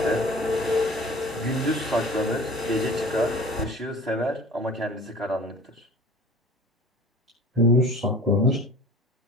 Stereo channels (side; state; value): both; normal; correlation 0.43